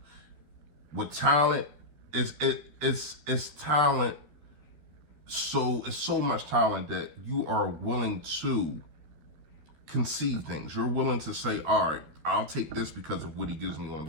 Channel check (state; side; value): late; left; 13 ms